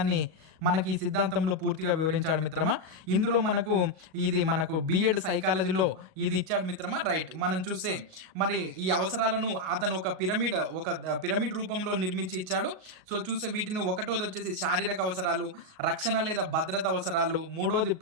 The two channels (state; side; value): late; left; 38 ms